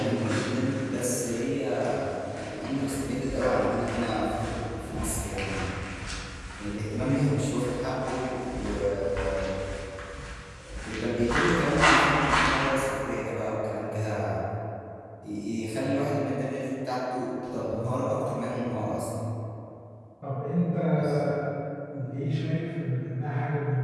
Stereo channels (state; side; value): identical; both; correlation 1.00